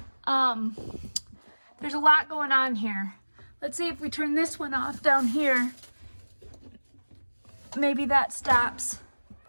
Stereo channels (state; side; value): inverted; both; correlation -1.00